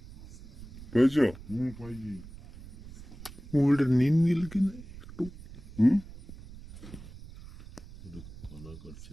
পেয়েছ? মোবিলটা নিন গেল কিনা একটু।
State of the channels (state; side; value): noise; right; rumble, 16 dB below the sound